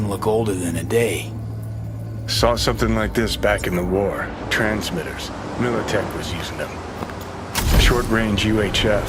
look older than a day. Saw something like this back in the war. Transmitters. Militech was using them. Short-range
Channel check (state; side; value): identical; both; correlation 1.00